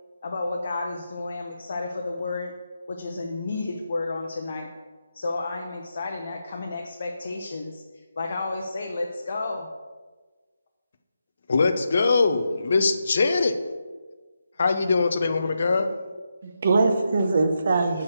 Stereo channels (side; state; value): both; inverted; correlation -0.86